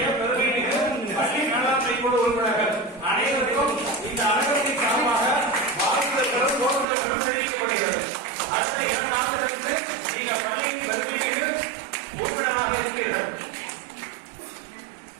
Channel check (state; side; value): drops out; left; at 6.9 s